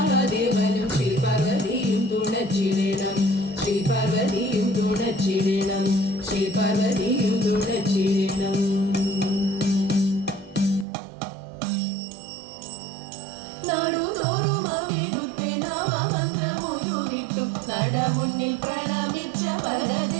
ശ്രീ പാർവതിയും തുണച്ചിടണം ശ്രീ പാർവതിയും തുണച്ചിടണം ശ്രീ പാർവതിയും തുണച്ചിടണം നാടുതോറും അവിടുത്തെ നാമമന്ത്രമുയരിട്ടു നടമുന്നിൽ പ്രണമിച്ച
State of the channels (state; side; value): drops out; left; at 10.9 s